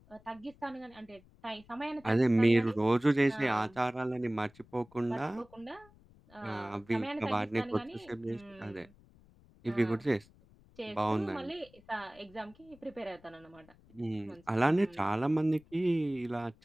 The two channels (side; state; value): left; noise; rumble, 26 dB below the sound